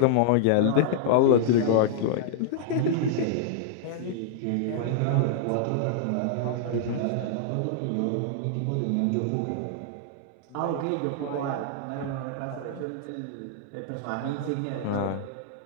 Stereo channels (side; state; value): both; different; correlation -0.01